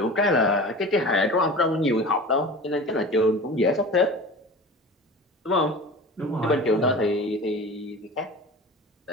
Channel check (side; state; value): both; normal; correlation 0.35